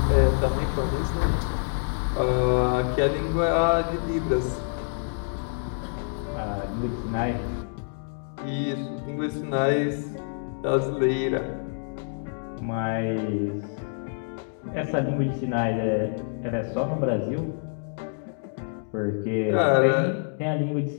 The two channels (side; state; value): right; silent; digital silence